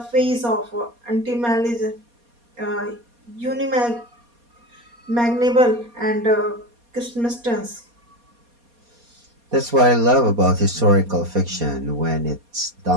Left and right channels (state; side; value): late; left; 4.2 ms